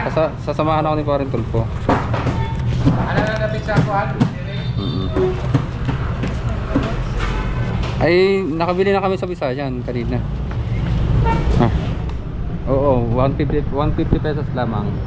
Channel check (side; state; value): both; identical; correlation 1.00